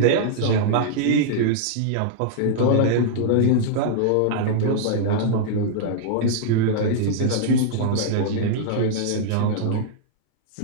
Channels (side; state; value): both; different; correlation -0.01